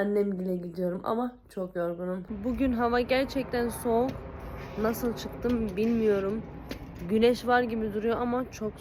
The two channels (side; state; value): both; identical; correlation 1.00